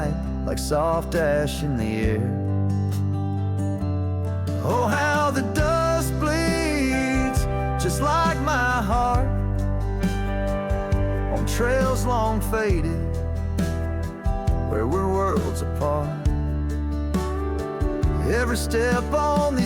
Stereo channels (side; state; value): both; identical; correlation 1.00